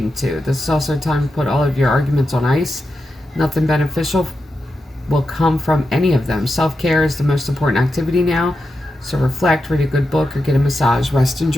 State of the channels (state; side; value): normal; both; correlation 0.88